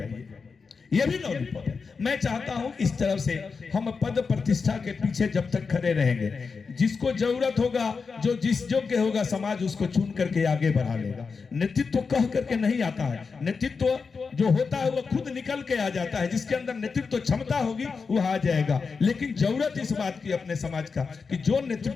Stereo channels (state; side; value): quieter; right; 5.0 dB